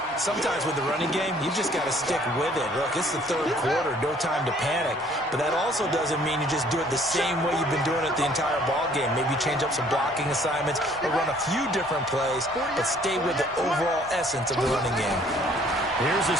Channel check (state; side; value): normal; both; correlation 0.59